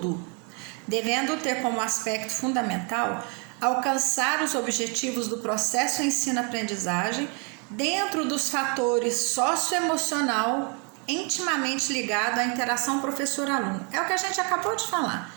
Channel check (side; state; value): left; quieter; 35.2 dB